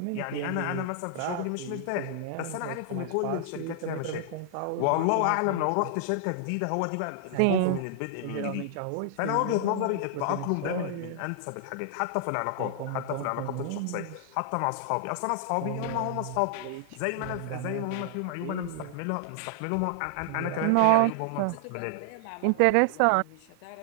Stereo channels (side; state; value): both; different; correlation -0.01